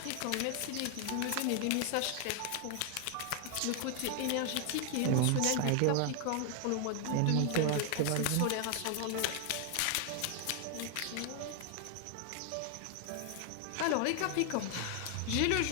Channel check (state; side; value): different; both; correlation 0.00